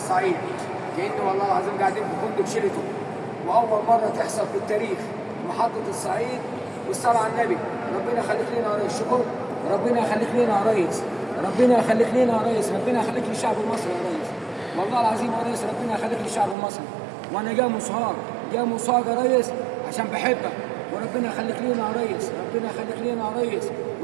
كأنه والله العظيم قاعدين في فندق شيراتون، وأول مرة تحصل في التاريخ محطة الصعيد والصلاة على النبي. ربنا يخليك لنا يا ريس. شكر. ربنا يخليك لنا يا ريس. ربنا يخليك لنا يا ريس. ربنا يخليك للشعب المصري يا ريس. والله العظيم يا ريس ربنا يخليك للشعب المصري. وانا جاي مصاب يا ريس عشان بحبك، وربنا يخليك لنا يا ريس. ربنا يخليك لنا يا ريس.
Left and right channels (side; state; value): left; drops out; at 16.6 s